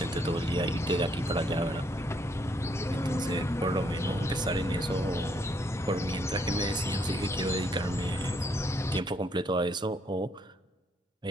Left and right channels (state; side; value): normal; both; correlation 0.71